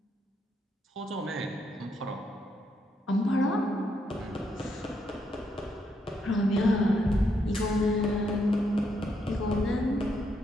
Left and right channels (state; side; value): normal; both; correlation 0.77